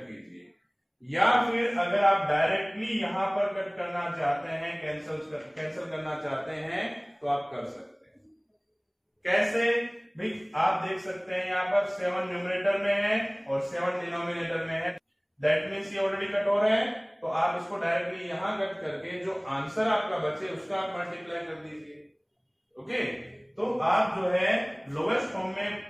कीजिए, या फिर अगर आप डायरेक्टली यहां पर कट करना चाहते हैं, कैंसिल करना चाहते हैं तो आप कर सकते हैं। कैसे भाई, आप देख सकते हैं यहां पर 7 न्यूमरेटर में है और 7 डिनोमिनेटर में है, दैट मीन्स ये ऑलरेडी कट हो रहा है। तो आप इसको डायरेक्टली यहां कट करके जो आंसर आपका बचे उसका आप मल्टीप्लाई कर दीजिए, ओके। तो आप जो है लोवेस्ट फॉर्म में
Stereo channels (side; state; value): both; identical; correlation 1.00